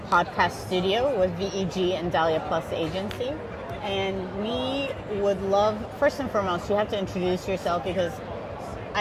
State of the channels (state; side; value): identical; both; correlation 1.00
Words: studio with VEG and Dahlia+Agency. And we would love, first and foremost, you have to introduce yourself because